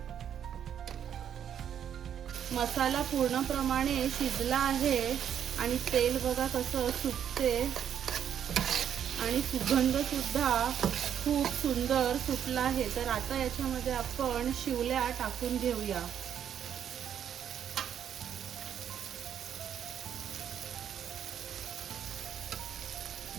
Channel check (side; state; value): left; quieter; 9.2 dB